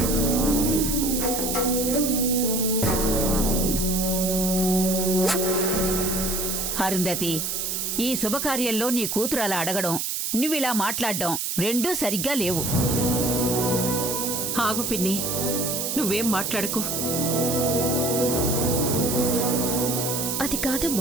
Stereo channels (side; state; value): right; noise; hiss, 1 dB below the sound